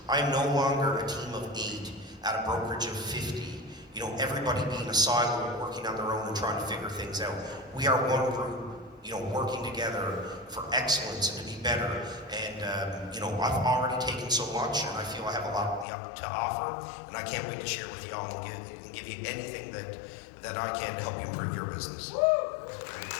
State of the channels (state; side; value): drops out; right; at 15.9 s